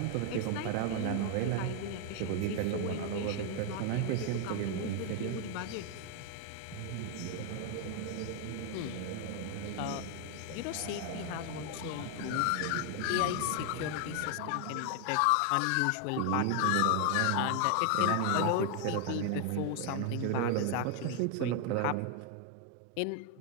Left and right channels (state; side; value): different; both; correlation 0.01